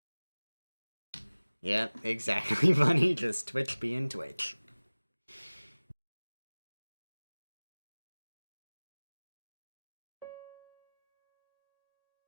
Yep, exactly, Bunny. Just Twitch being Twitch.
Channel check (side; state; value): both; inverted; correlation -1.00